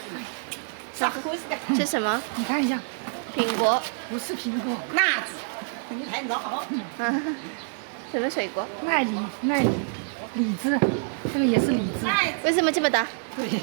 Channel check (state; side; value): silent; left; 61 dB below the other